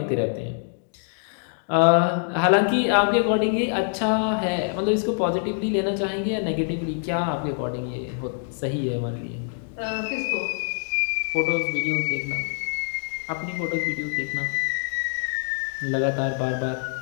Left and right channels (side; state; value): right; silent; 62 dB below the other